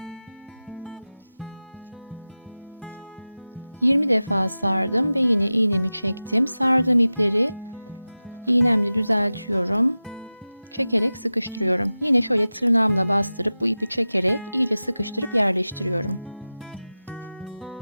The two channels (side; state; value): both; inverted; correlation -0.95